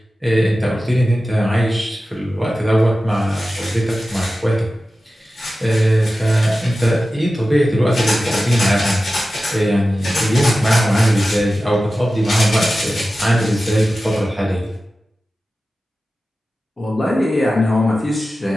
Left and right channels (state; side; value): normal; both; correlation 0.94